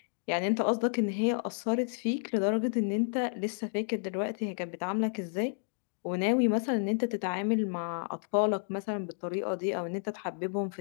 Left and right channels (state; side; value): silent; right; digital silence